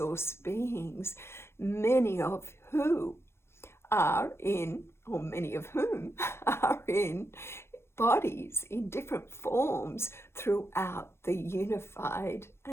beings, many of whom are in bodies in different forms throughout the unified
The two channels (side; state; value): right; late; 0.12 ms